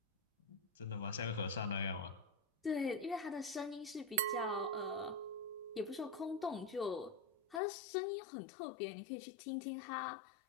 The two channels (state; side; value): drops out; right; at 7.6 s